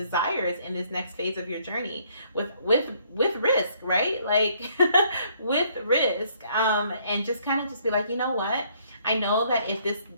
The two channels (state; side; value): inverted; both; correlation -0.65